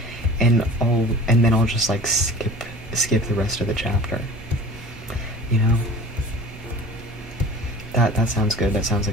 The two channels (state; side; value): normal; both; correlation 0.42